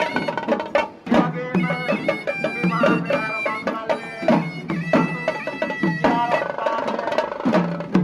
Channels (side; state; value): both; identical; correlation 1.00